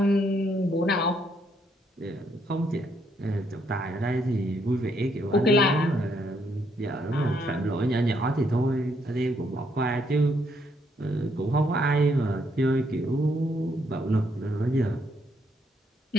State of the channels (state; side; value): normal; both; correlation 0.73